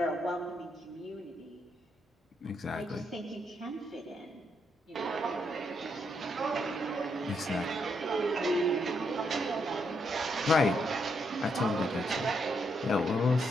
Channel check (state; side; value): normal; both; correlation 0.77